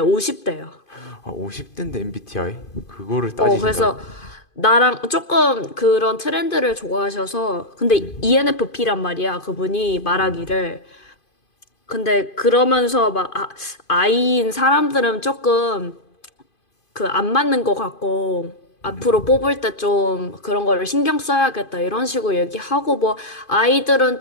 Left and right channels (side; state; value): right; late; 2.5 ms